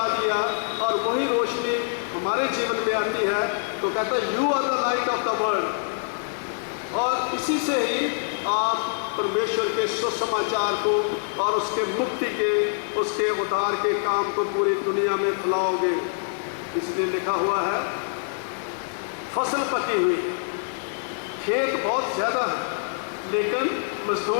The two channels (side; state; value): right; silent; 62 dB below the other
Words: दिया, और वही रोशनी हमारे जीवन में आती है। तो कहता है you are the light of the world, और इसी से ही आप परमेश्वर के सुसमाचार को और उसके मुक्ति के, उसके उद्धार के काम को पूरी दुनिया में फैलाओगे। इसलिए लिखा हुआ है फसल पकी हुई, खेत बहुत ज़्यादा है लेकिन